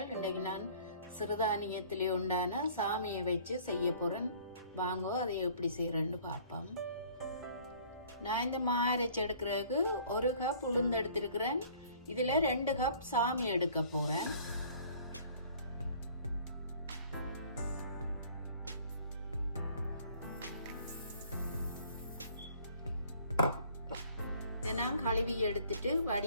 இன்றைக்கு நான் சிறுதானியத்திலே உண்டான சாமியை வச்சு செய்ய போகிறேன். வாங்கோ அதை எப்படி செய்கிறேன்னு பார்ப்போம். நான் இந்த மா அரைச்சி எடுக்கிறதுக்கு 1 கப் உளுந்து எடுத்திருக்கிறேன். இதில் 2 கப் சாமி எடுக்க போகிறேன். நான் கழுவி எடுத்துட்டு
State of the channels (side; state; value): both; inverted; correlation -0.54